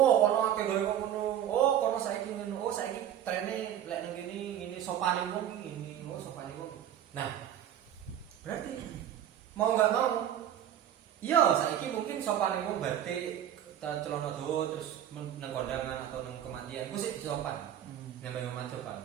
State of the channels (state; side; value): quieter; left; 10.7 dB